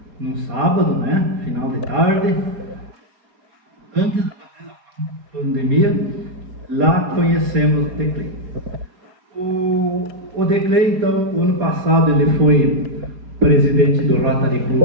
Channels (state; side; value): late; left; 4.3 ms